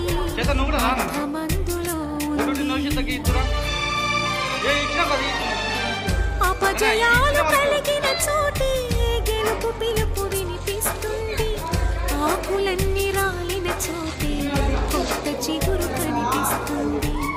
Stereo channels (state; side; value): identical; both; correlation 1.00